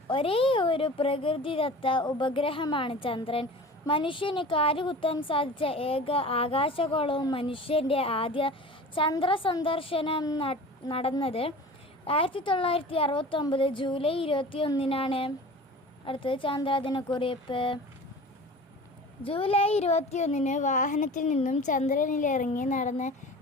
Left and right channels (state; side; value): normal; both; correlation 0.38